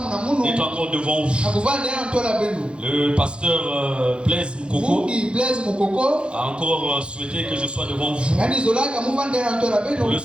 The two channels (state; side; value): late; left; 0.056 ms